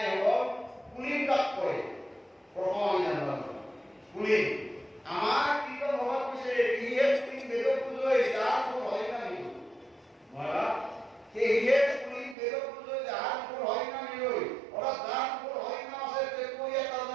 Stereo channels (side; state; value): left; drops out; at 12.4 s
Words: হ'ব কুলহীন কাক কয় প্ৰথম আমি জানিব কুলহীন আমাৰ কীৰ্তন ভগৱান কৈছে ইহে কুলহীন বেদক পূজয় যাৰ কোনো হয় না নিজ মৰা সেয়ে কুলহীন বেদক পূজয় যাৰ কোনো হয় না নিজ অৰ্থাৎ যাৰ কোনো হয় না আছে তেওঁকৈ এটা